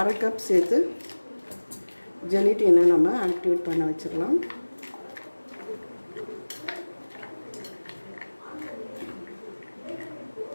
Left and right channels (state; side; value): inverted; both; correlation -1.00